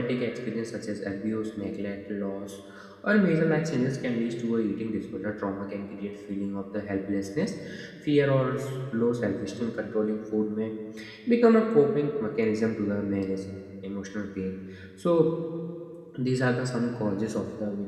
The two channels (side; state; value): both; identical; correlation 1.00